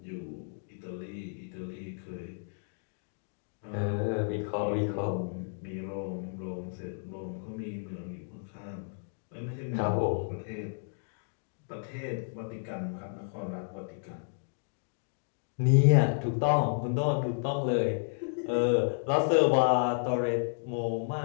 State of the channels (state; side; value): silent; right; digital silence